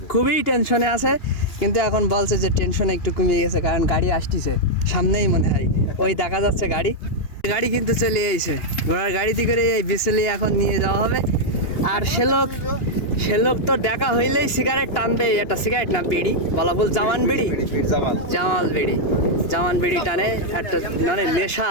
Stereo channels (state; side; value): late; right; 2.8 ms